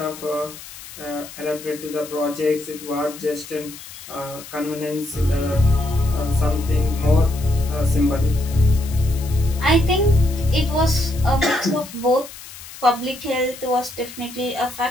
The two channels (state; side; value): noise; left; hiss, 15 dB below the sound